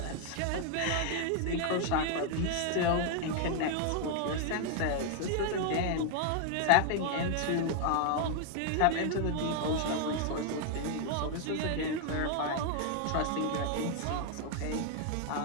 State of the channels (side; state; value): both; different; correlation 0.00